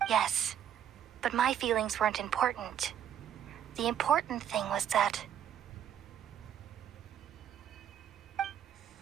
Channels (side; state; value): left; quieter; 9.7 dB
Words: Yes, but my feelings weren't important. The important thing was that